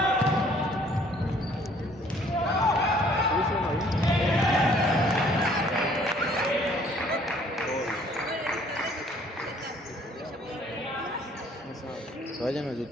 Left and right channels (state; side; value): normal; both; correlation 0.59